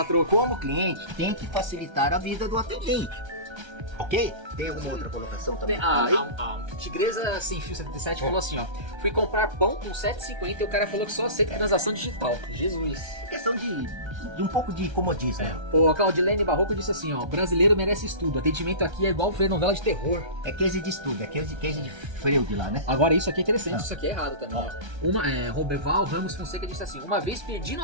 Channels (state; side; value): late; left; 1.3 ms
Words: como cliente, tem que facilitar a vida do atendente. Ok? Tem uma outra colocação também. A Tigresa Sem Fio 77 falou assim, ó. Fui comprar pão com 7,50 e o cara falou que só aceita transação digital. Jesus. Questão de um pouco de comodismo. O Claudilene Barroco disse assim, ó. Brasileiro merece estudo. Atendimento aqui é igual ver novela de terror. É case de estudo, é case de Freud lá, né? Agora isso aqui é interessante, isso aqui é errado também. Roberval Ramos Fonseca disse assim, uma vez pedi